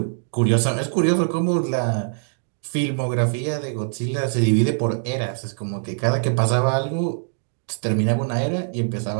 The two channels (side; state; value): left; silent; digital silence